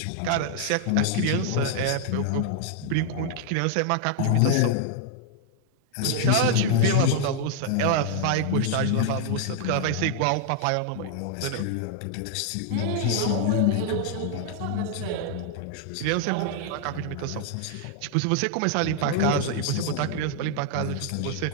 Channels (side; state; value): both; different; correlation 0.00